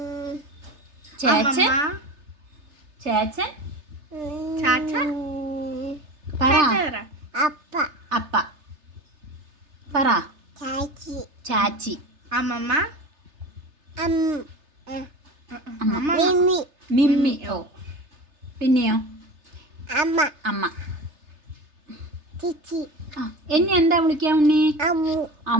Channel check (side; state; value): left; late; 3.3 ms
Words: ചേച്ചൻ, ചേച്ചൻ, പറ. അപ്പ പറ. ചാച്ചി, അമ്മമ്മ, മിമ്മി. ഓ പിന്നെയോ? അമ്മ. എന്നെ എന്താ വിളിക്കാ ഉണ്ണി?